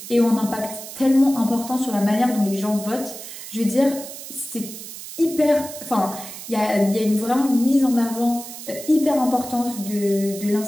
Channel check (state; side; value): noise; right; hiss, 12 dB below the sound